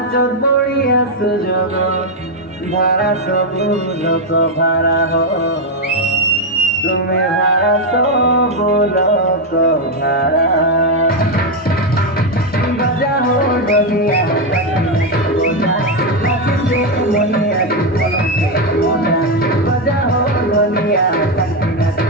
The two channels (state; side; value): normal; both; correlation 0.04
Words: চোদ বড়িয়া সুযোগ ভাড়া সবু লোক ভাড়া হ তুমি ভাড়া সবু লোক ভাড়া बजा हो डलिया बजा हो डलिया